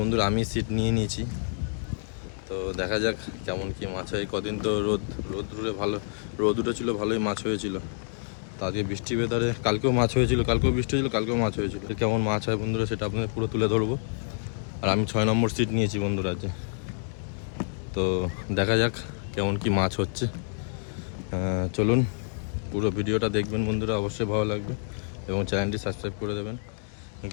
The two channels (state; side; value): silent; right; digital silence